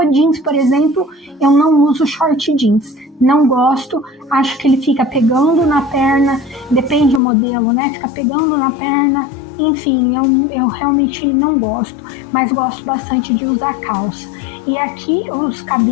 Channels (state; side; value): drops out; right; at 7.2 s